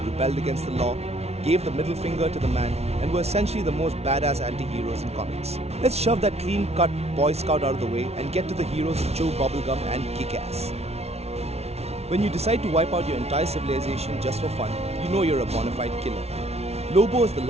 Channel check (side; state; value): left; late; 0.31 ms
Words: rebelled against the law, gave the middle finger to the man, and were essentially the most badass anti-heroes in comics. Let's shove that clean-cut Boy Scout out of the way and get to the heroes who chew bubblegum and kick ass. When you decide to wipe out your entire civilization just for fun, you know you're a bona fide killer. Lobo is the